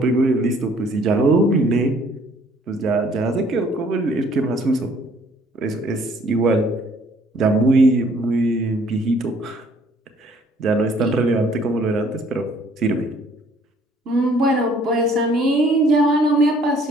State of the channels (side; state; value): both; normal; correlation 0.60